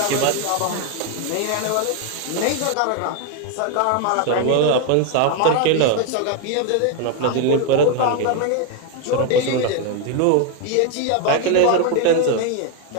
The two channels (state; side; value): different; both; correlation 0.01